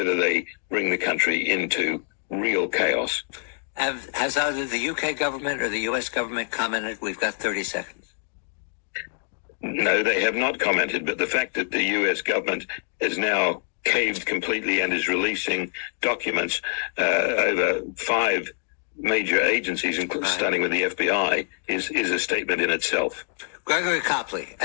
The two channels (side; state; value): right; silent; digital silence